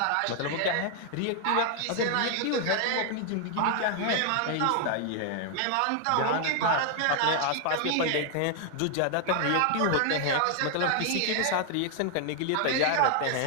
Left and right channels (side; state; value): both; different; correlation 0.00